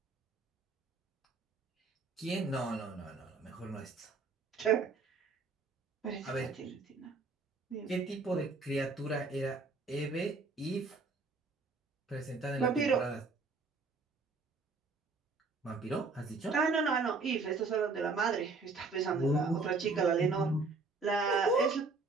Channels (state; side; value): quieter; left; 4.0 dB